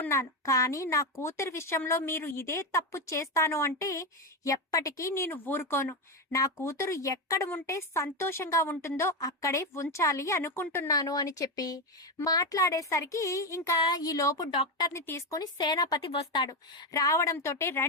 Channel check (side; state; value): both; normal; correlation 0.12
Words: కానీ నా కూతురు విషయంలో మీరు ఇదే తప్పు చేస్తాను అంటే ఎప్పటికీ నేను ఊరుకోను. నా కూతురు ఎక్కడ ఉంటే సంతోషంగా ఉంటుందో అక్కడే ఉంచాలి అనుకుంటున్నాను అని చెప్పి మాట్లాడేసరికి ఇంకా ఈ లోపు డాక్టర్ని తీసుకొని సేనాపతి వస్తాడు. రావడంతో